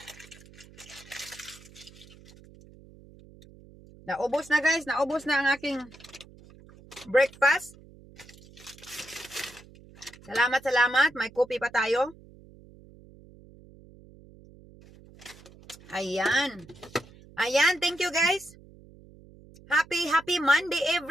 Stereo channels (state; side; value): noise; right; hum, 22 dB below the sound